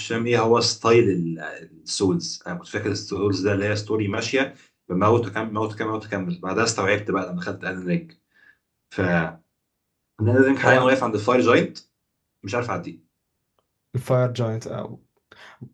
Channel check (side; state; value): both; identical; correlation 1.00